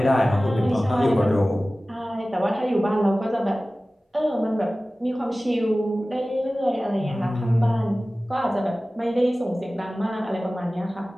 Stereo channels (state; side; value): normal; both; correlation 0.97